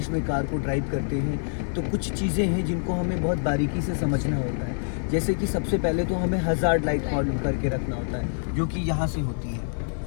में कार को ड्राइव करते हैं तो कुछ चीज़ें हैं जिनको हमें बहुत बारीकी से समझना होता है। जैसे कि सबसे पहले तो हमें हज़ार्ड लाइट ऑन करके रखना होता है, जो कि यहाँ से होती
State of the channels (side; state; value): right; silent; 61 dB below the other